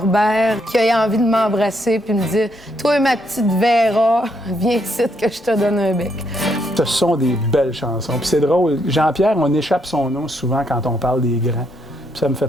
qu'il ait envie de m'embrasser puis me dire « Toi, ma petite Véra, viens ici que je te donne un bec. » Ce sont des belles chansons. Puis c'est drôle, Jean-Pierre, on échappe son nom souvent quand on parle des grands. Puis ça me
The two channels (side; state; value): both; normal; correlation 0.75